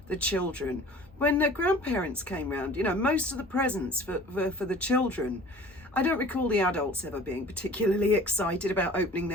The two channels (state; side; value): normal; both; correlation 0.46